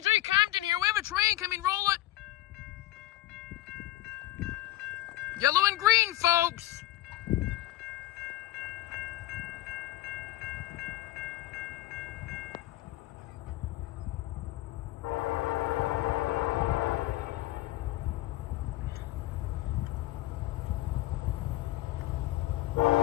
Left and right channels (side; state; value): right; quieter; 16.0 dB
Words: Compton here. We have a train coming, roll it. Yellow and green, folks.